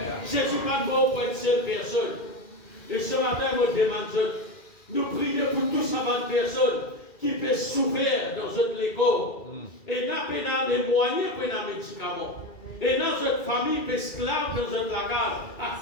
Jésus n'est pas mort pour une seule personne. Et ce matin, moi, je demande, nous prions pour toutes ces personnes qui peuvent souffrir dans notre école. Et nous avons les moyens pour les médicaments. Et dans notre famille, esclaves dans notre lacage, à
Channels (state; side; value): late; right; 2.3 ms